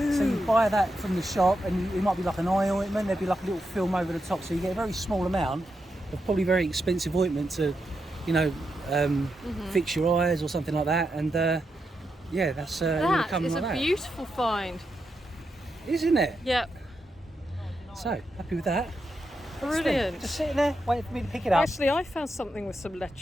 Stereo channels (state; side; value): normal; both; correlation 0.85